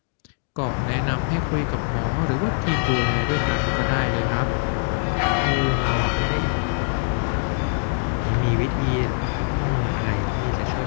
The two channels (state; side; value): silent; right; 57 dB below the other